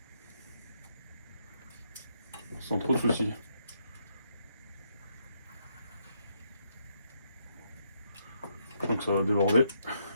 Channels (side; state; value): both; inverted; correlation -0.77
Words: Sans trop de soucis. Donc ça va déborder.